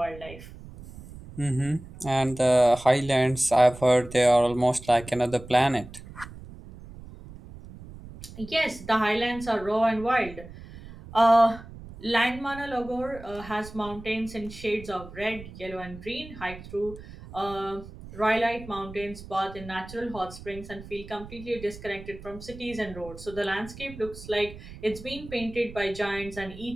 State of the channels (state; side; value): noise; right; rumble, 15 dB below the sound